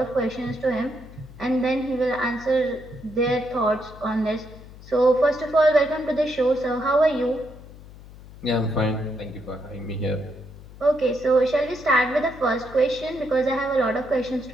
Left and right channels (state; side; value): noise; left; hum, 18 dB below the sound